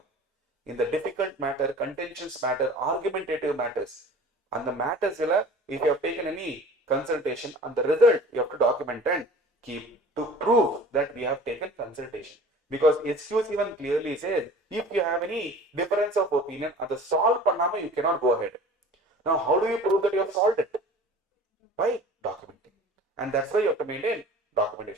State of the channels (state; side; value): normal; both; correlation 0.43